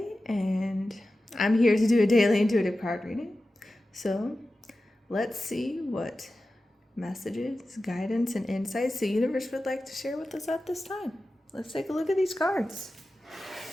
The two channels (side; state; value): both; normal; correlation 0.94